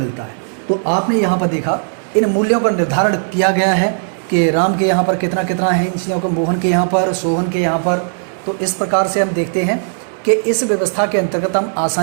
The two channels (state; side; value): silent; left; digital silence